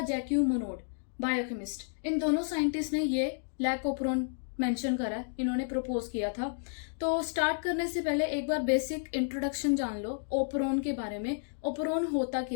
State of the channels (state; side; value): silent; right; digital silence